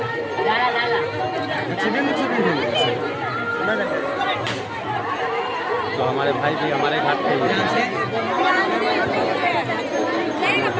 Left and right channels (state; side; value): identical; both; correlation 1.00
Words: तो हमारे भाई भी हमारे घाट पे बहुत